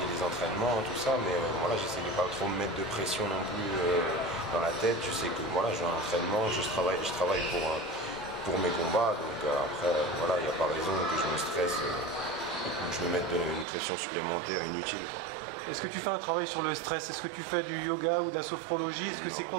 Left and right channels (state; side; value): drops out; left; at 13.7 s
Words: les entraînements, tout ça, mais voilà, j'essaie de pas trop me mettre de pression non plus dans la tête. Je sais que voilà, j'ai un entraînement, je travaille pour mes combats, donc après voilà, il n'y a pas raison que je me stresse ou que je me mette une pression supplémentaire inutile. Est-ce que tu fais un travail sur le stress? Est-ce que tu fais du yoga ou de la sophrologie? Est-ce que c'est